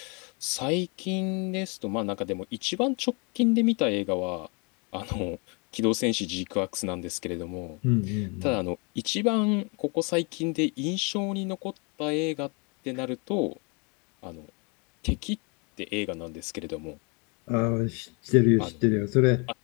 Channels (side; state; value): right; quieter; 32.7 dB